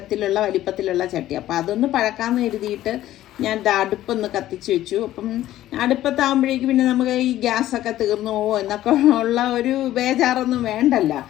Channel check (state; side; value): quieter; right; 13.8 dB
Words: വലിപ്പത്തിലുള്ള ചട്ടി. അപ്പം അതൊന്ന് പഴക്കാമെന്ന് കരുതിയിട്ട് ഞാൻ അടുപ്പൊന്ന് കത്തിച്ച് വെച്ചു. അപ്പം അടുപ്പത്താകുമ്പോഴേക്ക് പിന്നെ നമുക്ക് ഈ ഗ്യാസൊക്കെ തീർന്നു പോകുമോ എന്നൊക്കെ ഉള്ള ഒരു ബേജാറൊന്നും വേണ്ടല്ല.